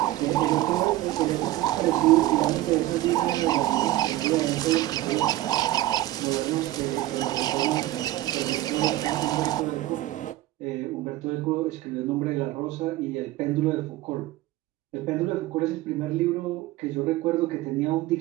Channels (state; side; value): quieter; left; 16.0 dB